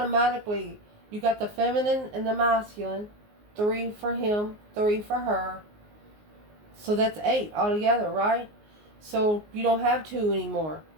you got the feminine and the masculine. 3 for him, 3 for her. So that's 8 altogether, right? So you don't have 2 anymore.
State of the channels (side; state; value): left; late; 19 ms